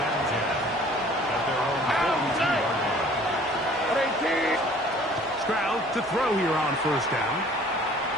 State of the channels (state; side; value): normal; both; correlation 0.52